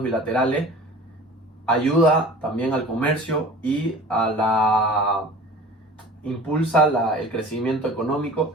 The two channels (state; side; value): normal; both; correlation 0.41